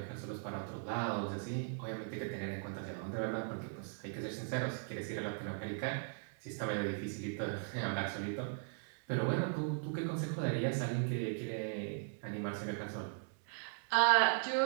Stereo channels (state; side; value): silent; left; digital silence